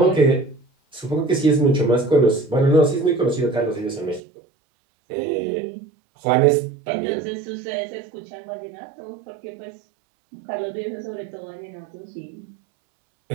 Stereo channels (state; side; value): drops out; left; at 4.2 s